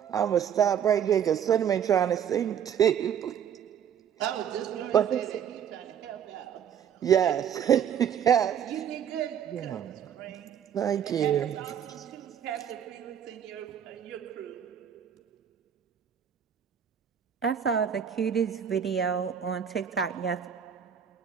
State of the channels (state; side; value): quieter; left; 8.7 dB